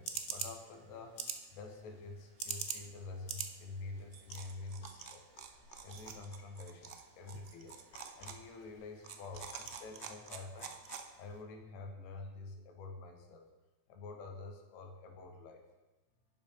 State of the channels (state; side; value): late; right; 18 ms